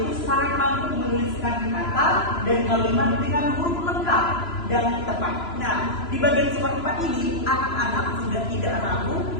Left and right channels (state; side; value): late; right; 3.0 ms